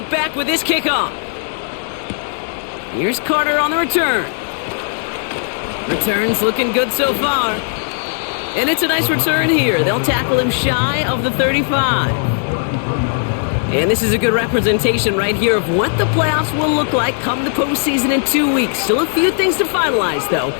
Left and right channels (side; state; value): right; silent; digital silence